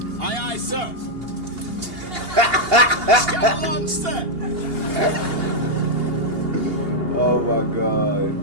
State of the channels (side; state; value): left; late; 2.8 ms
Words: Aye, aye, sir. Scout launch, sir. Oh my